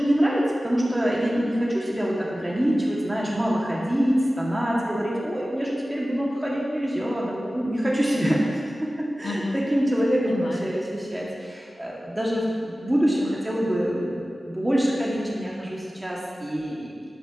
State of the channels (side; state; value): both; normal; correlation 0.96